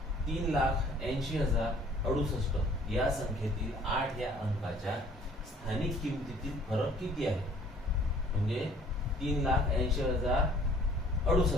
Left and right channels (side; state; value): both; normal; correlation 0.56